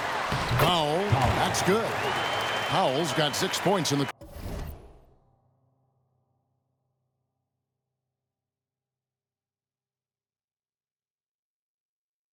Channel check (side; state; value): both; identical; correlation 1.00